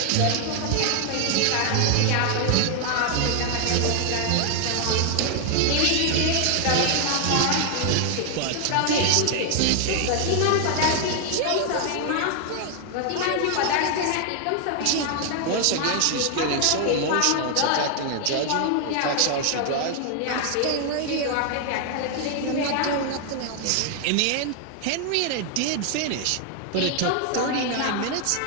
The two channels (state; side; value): different; both; correlation 0.00